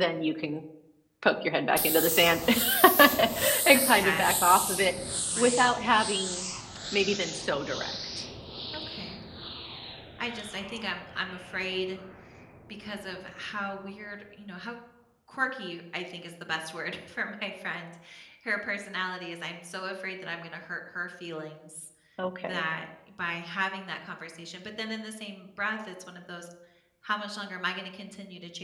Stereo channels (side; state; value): both; identical; correlation 1.00